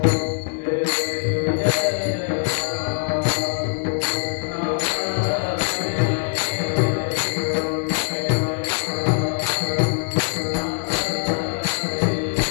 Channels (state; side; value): silent; right; digital silence